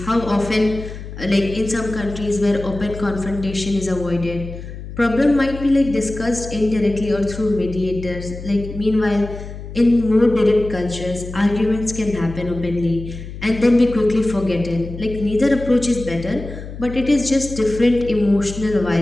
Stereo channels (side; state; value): left; noise; hum, 11 dB below the sound